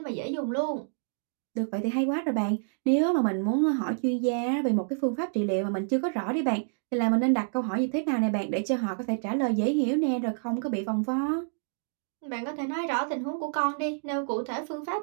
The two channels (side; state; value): left; silent; digital silence